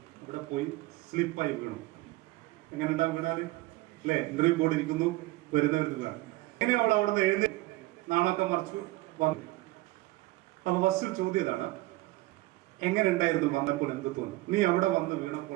ഇവിടെ പോയി സ്ലിപ്പായി വീണു. എങ്ങനെ ഉണ്ടാവും വീണാല് അല്ലെ? ഇന്റർവ്യൂ ബോർഡ് ഇരിക്കുന്നു, വരുന്നവർക്ക് വീണാണ്. എങ്ങനെ അവൾ അവിടെ നിന്ന് എഴുതി നാണൊക്കെ മറിച്ചു വന്നു. അപ്പൊ ഫസ്റ്റ് ചോദ്യം ഇതാണ്, എങ്ങനെ ഉണ്ടായിരുന്നു വന്നപ്പോൾ എന്ത് തോന്നി? നീ അവിടെ വന്ന്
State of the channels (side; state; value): left; quieter; 19.4 dB